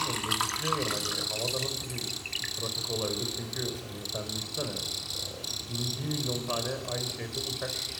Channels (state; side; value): identical; both; correlation 1.00